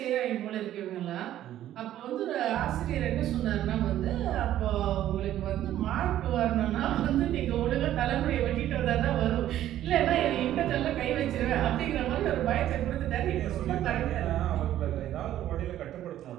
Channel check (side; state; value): left; quieter; 12.5 dB